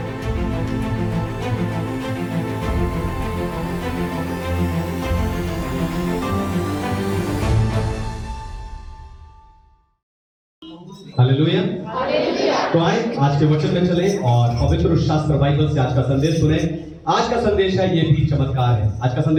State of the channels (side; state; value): both; identical; correlation 1.00